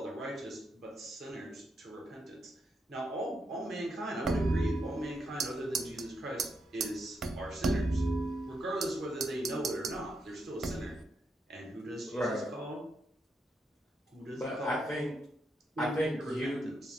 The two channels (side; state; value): both; normal; correlation 0.82